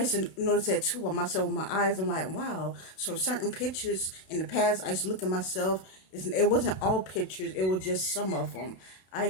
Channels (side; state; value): right; late; 32 ms